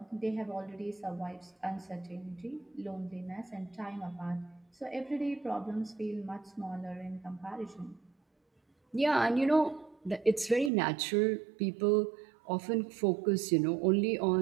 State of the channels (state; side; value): drops out; left; at 10.7 s